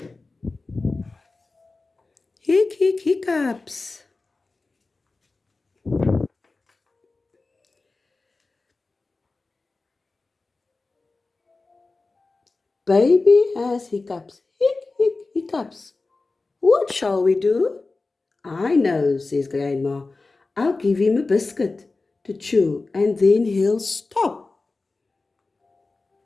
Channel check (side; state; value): right; quieter; 3.6 dB